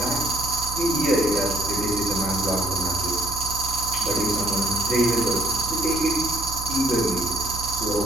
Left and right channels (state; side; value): noise; right; hum, 9 dB below the sound